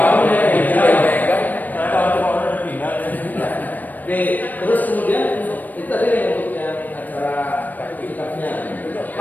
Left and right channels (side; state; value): right; late; 0.085 ms